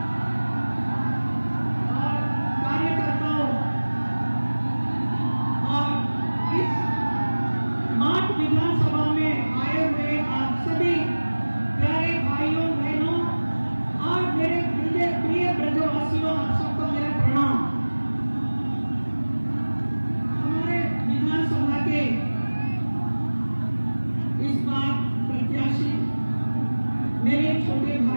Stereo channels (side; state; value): both; inverted; correlation -1.00